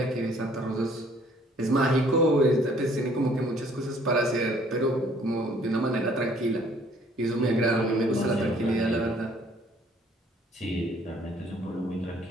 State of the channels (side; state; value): both; normal; correlation 0.59